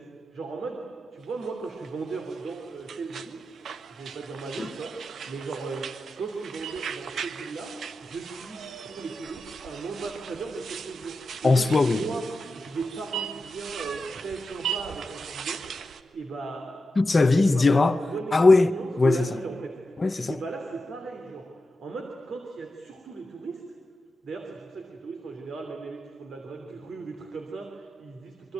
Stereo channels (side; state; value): both; normal; correlation 0.91